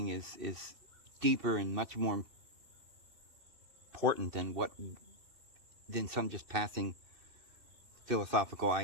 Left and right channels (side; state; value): left; late; 2.6 ms